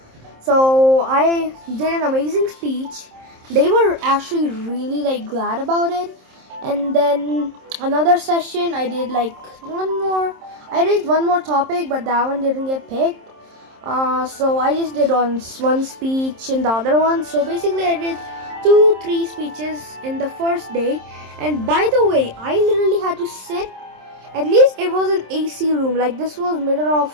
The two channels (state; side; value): late; left; 27 ms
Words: So I did an amazing speech. They were actually really like glad about it. And then another session I did like I raised one more topic, but that one didn't get picked. So I just did one speech in the other one. So basically I did 2-3 speeches in the first day. And by the way, I literally had to sit, at least it was an AC room, like this was middle